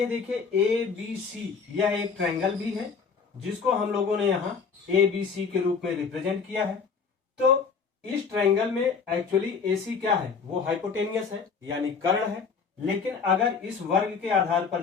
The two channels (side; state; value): right; quieter; 5.5 dB